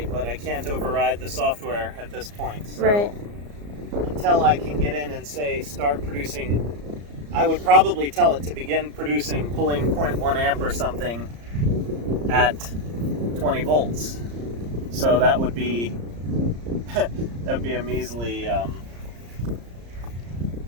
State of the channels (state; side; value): late; left; 34 ms